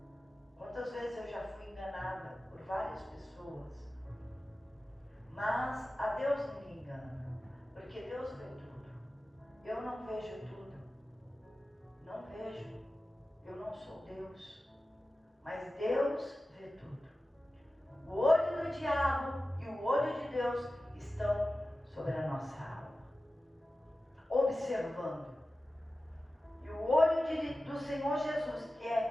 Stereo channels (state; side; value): normal; both; correlation 0.95